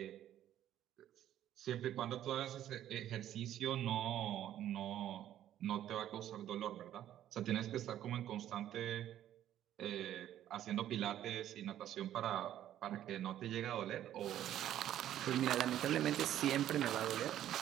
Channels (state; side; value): quieter; left; 11.8 dB